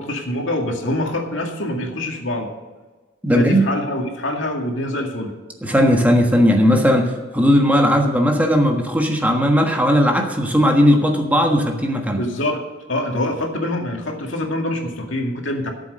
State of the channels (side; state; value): both; normal; correlation 0.71